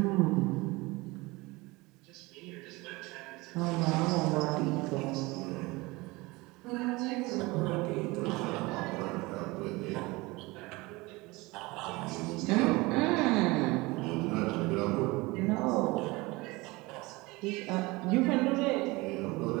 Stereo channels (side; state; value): left; quieter; 22.8 dB